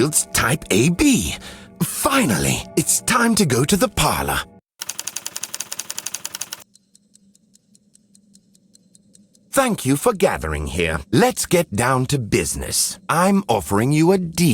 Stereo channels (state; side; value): identical; both; correlation 1.00